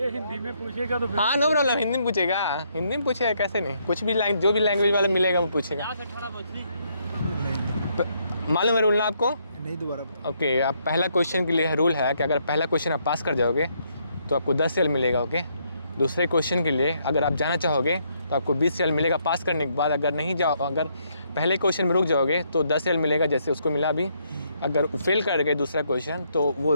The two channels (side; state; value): both; inverted; correlation -0.73